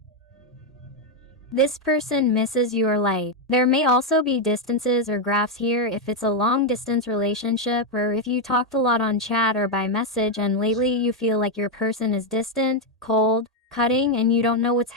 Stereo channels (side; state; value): both; normal; correlation 0.02